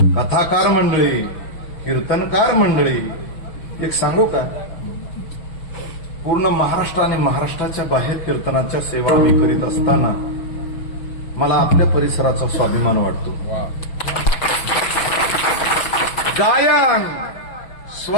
कथाकार मंडळी, कीर्तनकार मंडळी, एक सांगू का, पूर्ण महाराष्ट्र आणि महाराष्ट्राच्या बाहेर कीर्तनाच्या सेवा मी करीत असताना मला आपल्या परिसराचा स्वाभिमान वाटतो. गायन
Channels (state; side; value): late; right; 6.2 ms